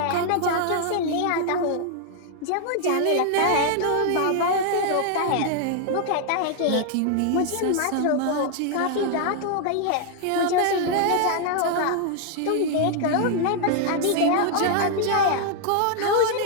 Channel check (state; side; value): different; both; correlation 0.00